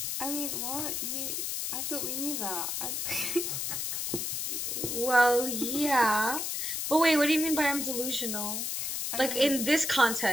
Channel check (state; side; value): noise; left; hiss, 2 dB below the sound